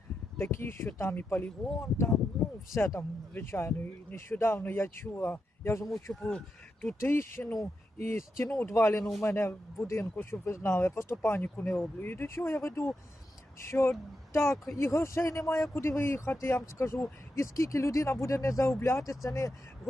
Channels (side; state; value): both; normal; correlation 0.87